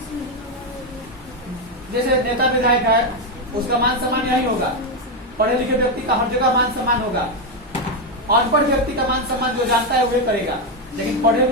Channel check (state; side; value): normal; both; correlation 0.06